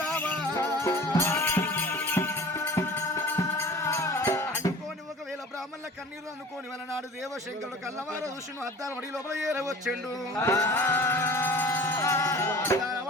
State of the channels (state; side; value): normal; both; correlation 0.42